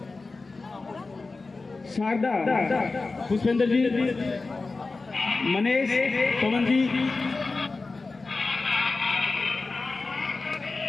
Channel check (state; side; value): quieter; right; 3.7 dB